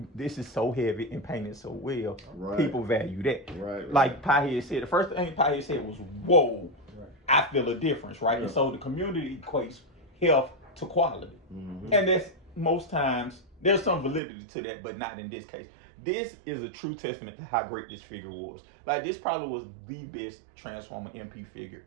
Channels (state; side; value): drops out; left; at 14.2 s